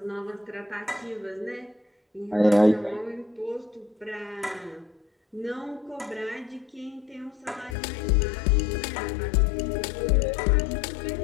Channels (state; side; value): drops out; right; at 7.8 s